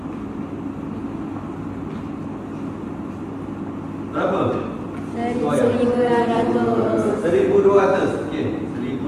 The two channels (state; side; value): identical; both; correlation 1.00